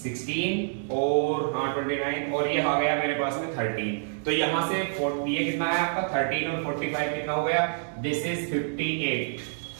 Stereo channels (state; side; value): silent; left; digital silence